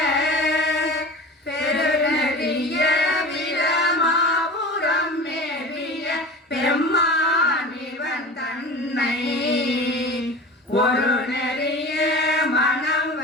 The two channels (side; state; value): both; normal; correlation 0.34